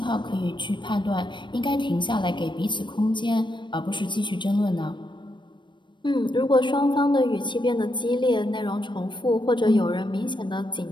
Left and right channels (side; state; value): right; late; 0.22 ms